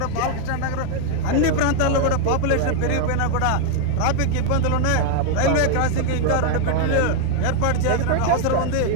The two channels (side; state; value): both; different; correlation 0.00